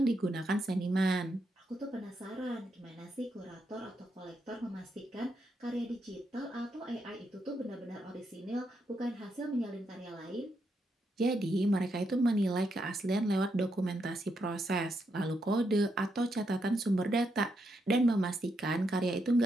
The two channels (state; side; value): normal; both; correlation 0.80